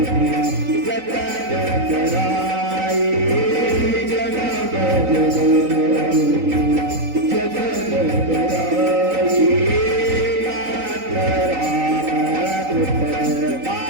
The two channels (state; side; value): late; left; 3.9 ms